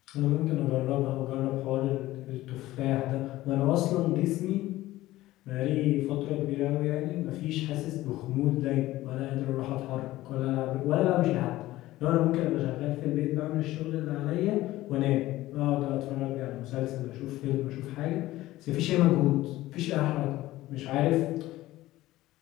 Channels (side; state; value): right; quieter; 16.6 dB